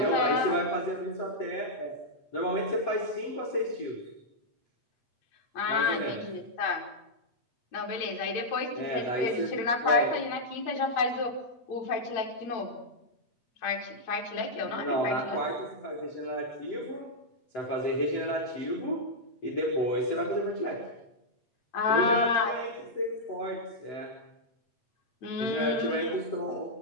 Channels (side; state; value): right; late; 8.8 ms